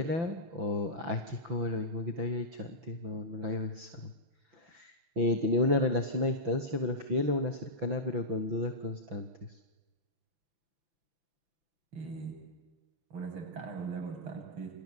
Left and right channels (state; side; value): late; left; 6.0 ms